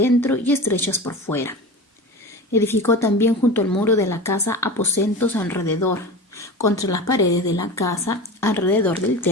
y estrechas por fuera. Edificó también junto al muro de la casa aposentos alrededor, contra las paredes de la casa, alrededor del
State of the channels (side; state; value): both; normal; correlation 0.30